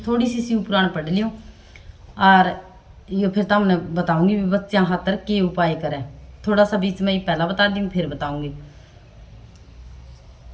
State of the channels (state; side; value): identical; both; correlation 1.00